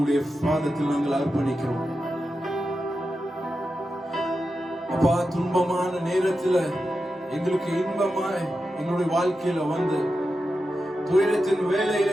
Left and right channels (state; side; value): normal; both; correlation 0.90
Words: பாதத்தில் நாங்கள் அர்ப்பணிக்கிறோம். அப்பா, துன்பமான நேரத்தில் எங்களுக்கு இன்பமாய் எங்களுடைய வாழ்க்கையில வந்து துயரத்தின்